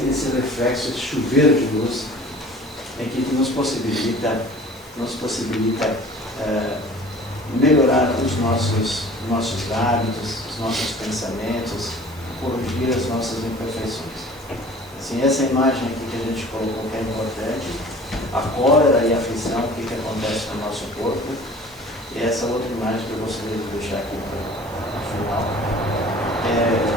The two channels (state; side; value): normal; both; correlation 0.46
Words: reflexo, esse chuveiro de luz, que nos possibilita melhorar os nossos hábitos, os nossos pensamentos, corrigir as nossas imperfeições. Assim, essa imagem aqui que a gente colocou que é importante, a cólera e a aflição, o que acontece no nosso corpo, e essa outra imagem que eu gostaria de deixar aqui no final.